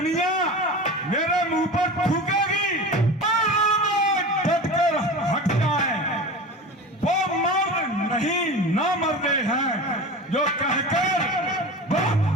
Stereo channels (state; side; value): normal; both; correlation 0.31